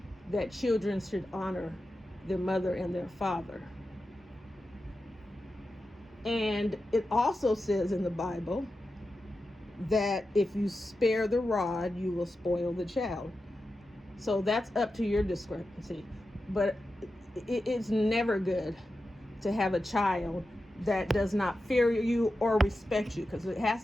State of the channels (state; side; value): normal; both; correlation 0.91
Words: that children should honor their mother and their father. And it also says in the Bible that if you spare the rod, you will spoil the child. So that's up to your discrepancy. But it's never good to have a child that does not fear you or respect you, because it